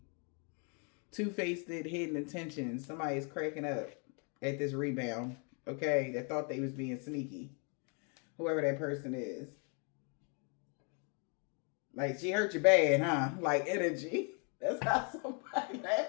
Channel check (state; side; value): quieter; right; 37.7 dB